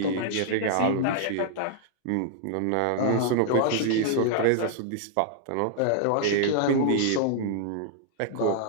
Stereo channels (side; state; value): both; different; correlation -0.01